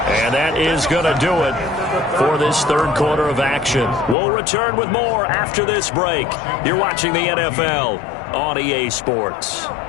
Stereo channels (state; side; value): drops out; right; at 4.2 s